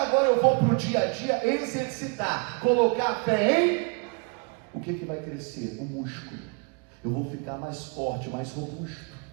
eu vou para o dia a dia exercitar, colocar a fé em... O que vai crescer? O músculo. Eu vou ficar mais forte, mais robusto.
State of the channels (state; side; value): quieter; left; 36.0 dB